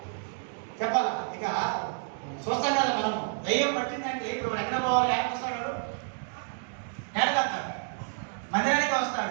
చెప్పాలా? ఇక చూస్తాం కదా మనం, దయ్యం పట్టిందంటే ఇప్పుడు ఎక్కడ పోవాలి? వస్తాడు, నేలకెళ్తాడు, మందిరానికి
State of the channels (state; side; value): silent; left; 58 dB below the other